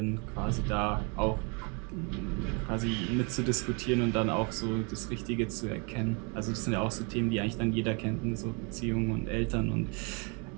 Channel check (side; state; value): left; quieter; 33.6 dB